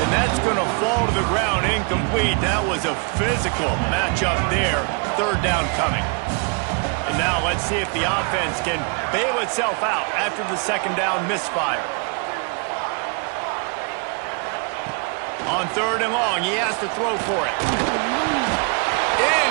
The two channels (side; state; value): left; quieter; 35.9 dB